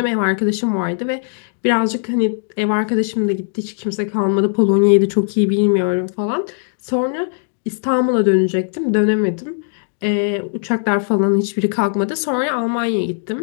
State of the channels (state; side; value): silent; right; 64 dB below the other